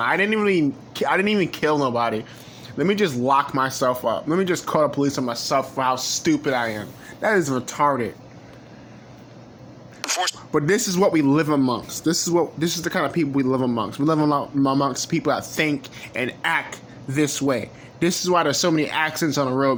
didn't even kill nobody. Let me just lock myself up. Let me just call the police on myself for how stupid I am. That is retarded. But this is what we live amongst. This is the kind of people we live amongst. We live amongst people that think and act this way. This is why there's so many accidents on the road,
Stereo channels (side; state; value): both; identical; correlation 1.00